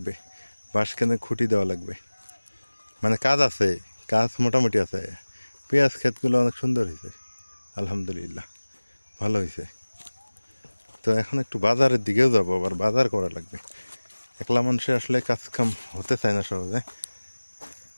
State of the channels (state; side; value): inverted; both; correlation -1.00